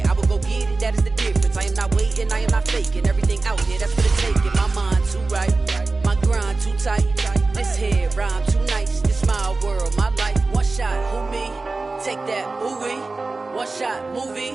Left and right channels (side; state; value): left; quieter; 3.6 dB